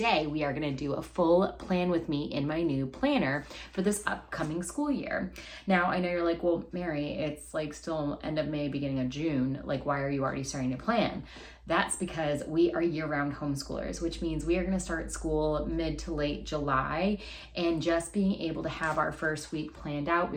we are gonna do a full plan with me in my new planner for this upcoming school year. Now, I know you're like, well, Mary, it's like still end of May, beginning of June. Like, why are you already starting to plan? That's because we are year-round homeschoolers, which means we are going to start school mid to late July, and just being able to have our first week planned out,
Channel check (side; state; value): both; identical; correlation 1.00